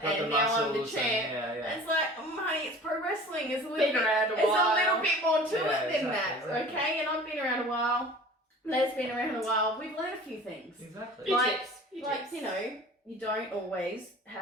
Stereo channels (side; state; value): both; normal; correlation 0.43